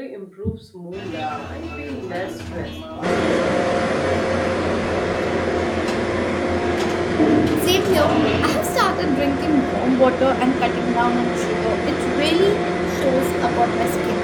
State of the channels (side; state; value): both; identical; correlation 1.00